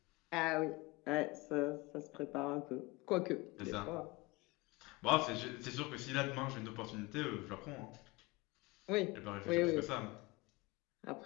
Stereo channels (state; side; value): quieter; right; 23.2 dB